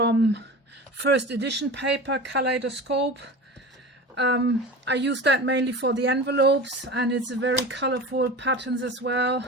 first edition paper, Kaleidoscope. I use that mainly for the envelopes, and it's a very colorful patterns as well.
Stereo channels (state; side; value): normal; both; correlation 0.32